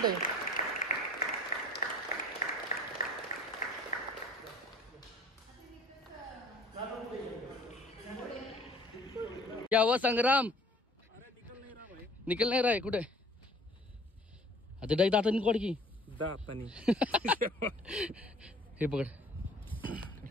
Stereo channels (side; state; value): both; normal; correlation 0.52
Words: क्या हुआ संग्राम? निकल नहीं रहा है कुठे? आता डाई दातानी कोड की दातानी हे पकड,